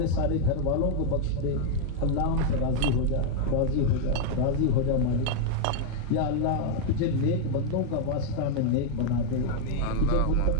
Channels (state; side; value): different; both; correlation 0.00